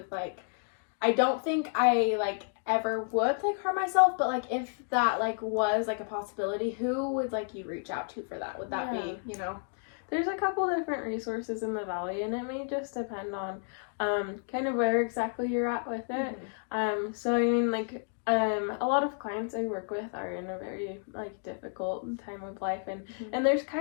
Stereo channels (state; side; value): silent; right; 57 dB below the other